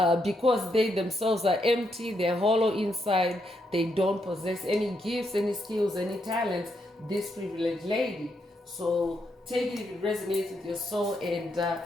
they themselves are empty, they're hollow inside, they don't possess any gifts, any skills, any talents, this privileged lady. So take it if it resonates with your soul and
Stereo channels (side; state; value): both; normal; correlation 0.79